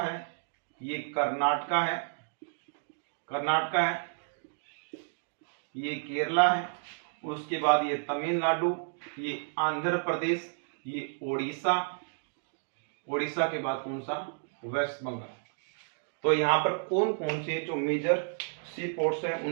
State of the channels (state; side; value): silent; left; digital silence